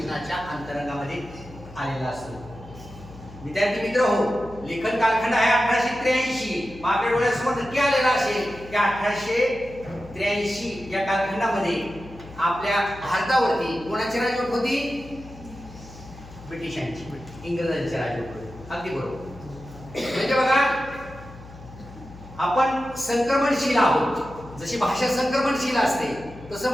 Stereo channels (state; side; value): noise; left; hum, 17 dB below the sound